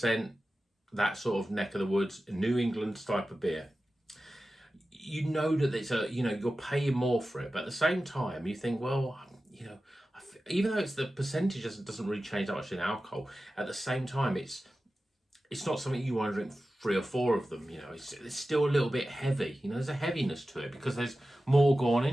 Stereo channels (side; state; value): both; normal; correlation 0.94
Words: that sort of neck of the woods, New England type of beer. That it's you're paying more for it, but at the same time you think, well, even though it's the percentage doesn't really change that much in alcohol, at the same time it's not something you want to drink 3 or 4 of them. It's still a little bit heavy. There's a heaviness to it because there's more going